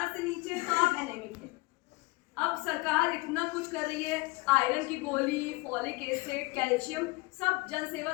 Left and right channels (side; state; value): right; quieter; 24.1 dB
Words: से नीचे है तो आप एनेमिक हैं। अब सरकार इतना कुछ कर रही है, आयरन की गोली, फॉलिक एसिड, कैल्शियम सब जन सेवा